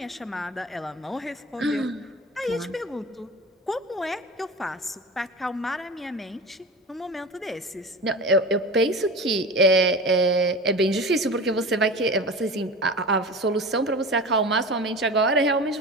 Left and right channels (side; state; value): both; normal; correlation 0.32